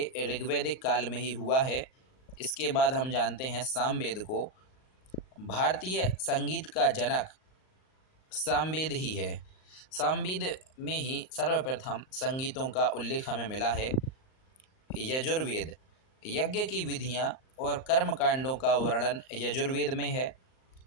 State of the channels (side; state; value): right; late; 38 ms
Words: ऋग्वैदिक काल में ही हुआ है। इसके बाद हम जानते हैं सामवेद को। भारतीय संगीत का जनक सामवेद ही है। सामवेद में ही सर्वप्रथम संगीतों का उल्लेख हमें मिला है। यजुर्वेद, यज्ञ की विधियाँ और कर्म कांडों का वर्णन यजुर्वेद में है।